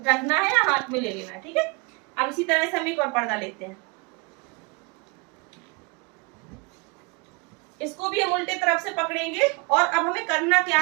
है या हाथ में ले लेना है, ठीक है। अब इसी तरह से हम एक और पर्दा लेते हैं, इसको भी हम उल्टे तरफ से पकड़ेंगे और अब हमें करना क्या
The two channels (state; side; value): quieter; left; 30.1 dB